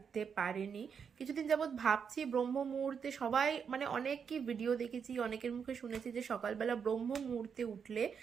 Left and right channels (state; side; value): quieter; left; 6.7 dB